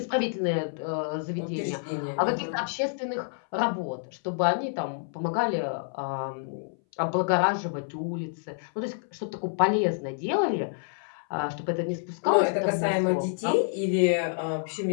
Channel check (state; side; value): silent; right; 59 dB below the other